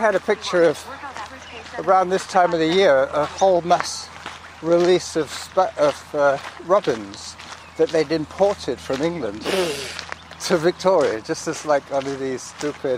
a picture of, around this time of the year, a whole mass release of robins that they'd imported from England to Victoria, just as like one of these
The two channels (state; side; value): identical; both; correlation 1.00